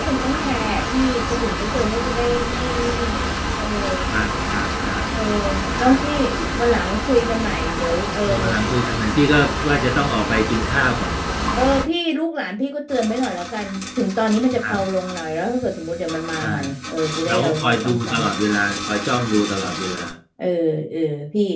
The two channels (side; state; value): both; identical; correlation 1.00